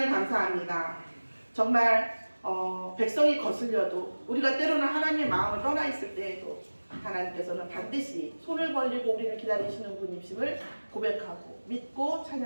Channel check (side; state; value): both; inverted; correlation -1.00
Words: 감사합니다. 정말 백성이 거슬려도, 우리가 때로는 하나님의 마음을 떠나 있을 때에도 하나님께서는 반드시 손을 벌리고 우리를 기다리시는 분이심을 고백하고 믿고